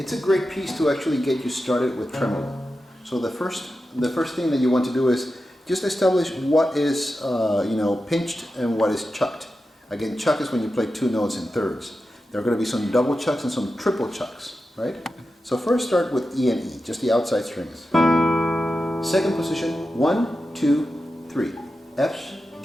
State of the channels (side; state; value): both; normal; correlation 0.91